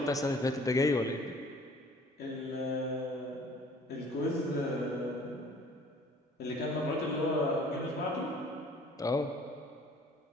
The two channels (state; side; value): normal; both; correlation 0.52